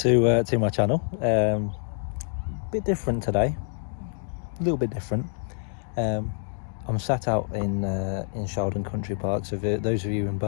my channel. Bit different today, a little bit different. I'm sat out in Sheldon Country Park, so for those of you in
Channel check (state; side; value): silent; right; digital silence